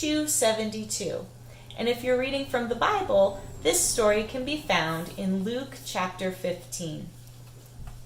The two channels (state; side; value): identical; both; correlation 1.00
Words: And if you're reading from the Bible, this story can be found in Luke chapter 15.